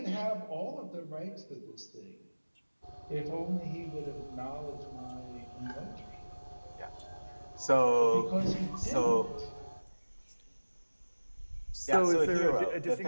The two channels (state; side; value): inverted; both; correlation -1.00